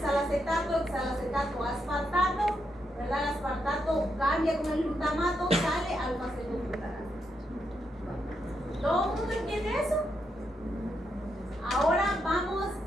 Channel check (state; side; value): normal; both; correlation 0.82